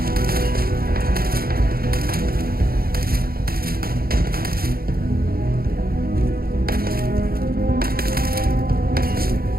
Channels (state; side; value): late; left; 0.43 ms